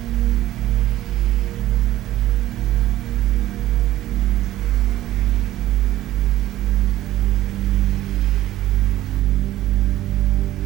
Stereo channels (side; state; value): left; quieter; 14.6 dB